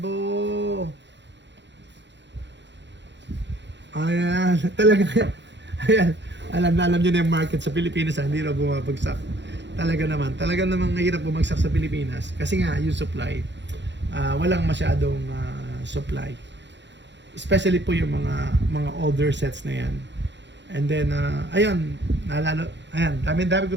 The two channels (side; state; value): left; late; 0.52 ms